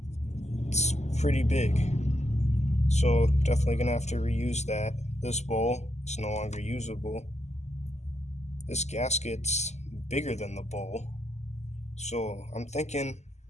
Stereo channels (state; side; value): late; right; 0.33 ms